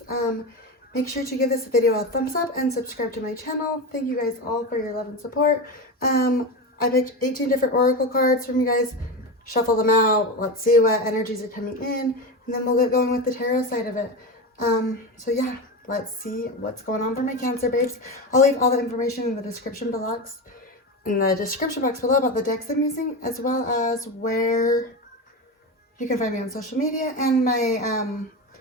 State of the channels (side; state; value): both; normal; correlation 0.20